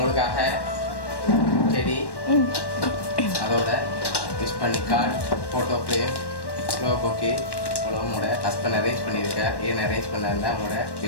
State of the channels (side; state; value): right; late; 1.1 ms